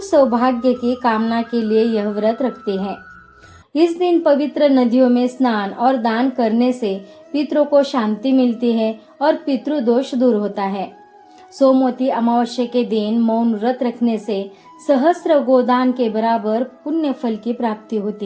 सौभाग्य की कामना के लिए यह व्रत रखती हैं। इस दिन पवित्र नदियों में स्नान और दान करने से पितरों को शांति मिलती है और पितृदोष दूर होता है। सोमवती अमावस्या के दिन मौन व्रत रखने से सहस्त्र गोदान के बराबर पुण्य फल की प्राप्ति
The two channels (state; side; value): identical; both; correlation 1.00